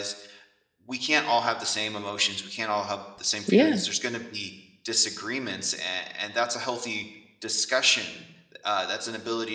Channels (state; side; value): identical; both; correlation 1.00